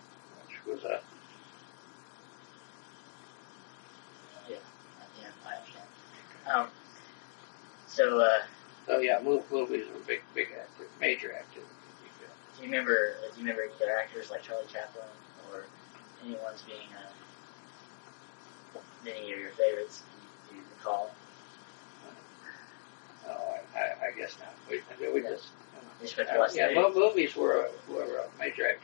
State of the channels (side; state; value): right; silent; digital silence